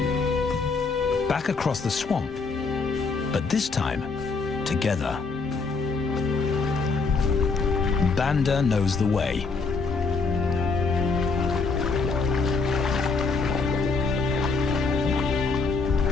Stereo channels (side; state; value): right; quieter; 4.4 dB